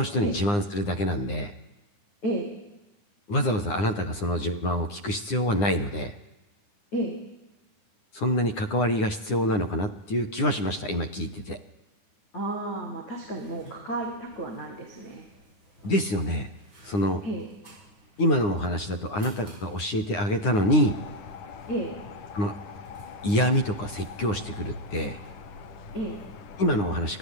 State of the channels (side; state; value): right; late; 9.8 ms